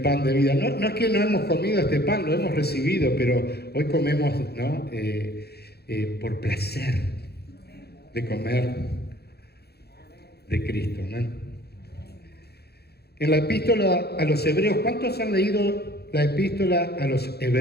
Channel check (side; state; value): right; late; 0.47 ms